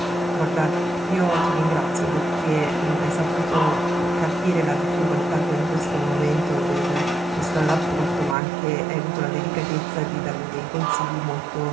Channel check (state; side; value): drops out; left; at 8.3 s